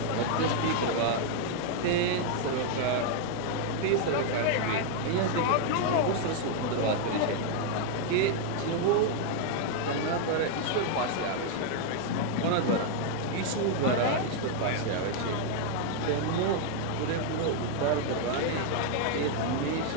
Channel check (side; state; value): both; different; correlation 0.00